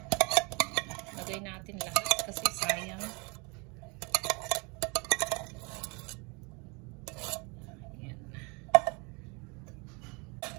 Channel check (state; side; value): quieter; left; 30.2 dB